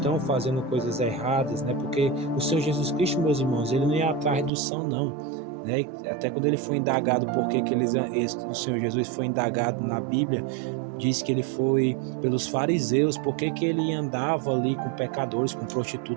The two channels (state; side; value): drops out; left; at 4.5 s